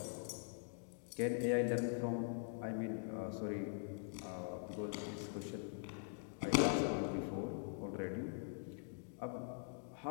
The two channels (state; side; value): silent; right; digital silence